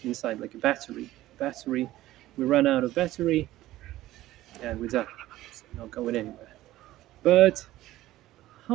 inside, like a battery. Battery, we run out of battery and we're done. It's not going anywhere. But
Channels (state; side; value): quieter; left; 15.6 dB